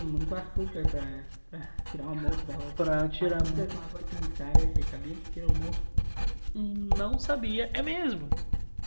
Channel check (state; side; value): inverted; both; correlation -1.00